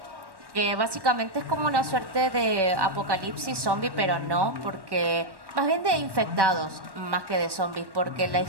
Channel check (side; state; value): left; late; 1.1 ms